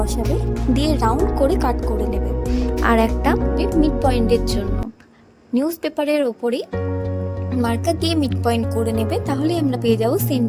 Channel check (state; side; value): identical; both; correlation 1.00